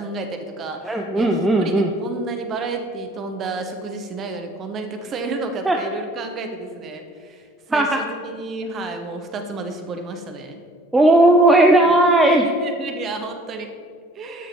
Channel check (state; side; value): normal; both; correlation 0.55